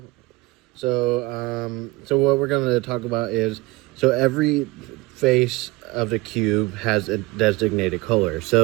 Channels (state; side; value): quieter; left; 21.7 dB